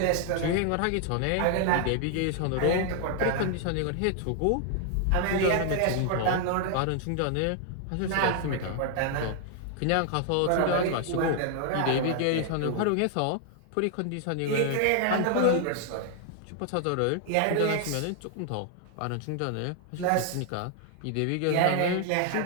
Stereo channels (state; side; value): different; both; correlation 0.00